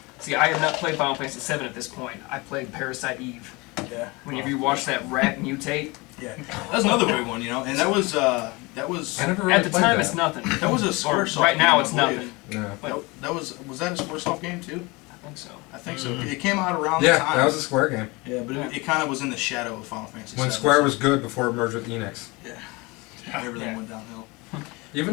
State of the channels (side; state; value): right; quieter; 25.2 dB